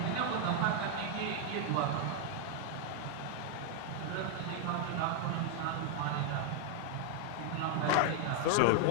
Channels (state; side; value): different; both; correlation 0.00